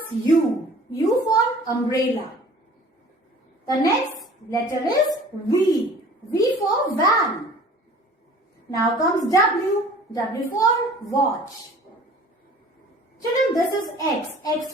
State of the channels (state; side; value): normal; both; correlation 0.48